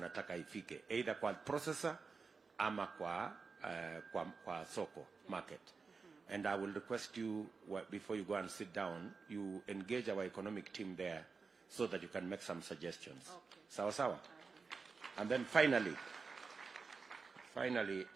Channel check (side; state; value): left; quieter; 4.8 dB